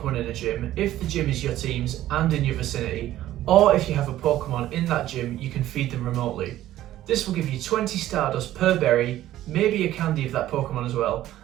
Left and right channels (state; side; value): quieter; left; 13.8 dB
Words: in a gym if the gym is your team's and in your vicinity, or if you have a Pokemon in that gym, you can feed them remotely. This will give you 20 Stardust per berry, maybe a candy of that Pokemon as well,